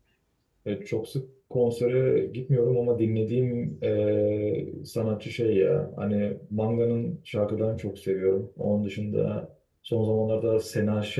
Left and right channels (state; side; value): identical; both; correlation 1.00